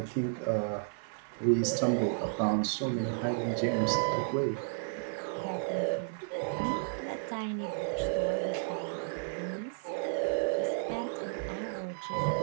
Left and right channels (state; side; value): silent; left; 56 dB below the other